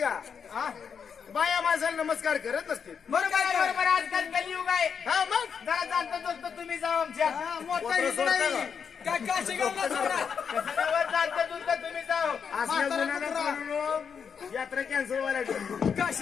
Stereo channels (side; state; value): right; quieter; 6.7 dB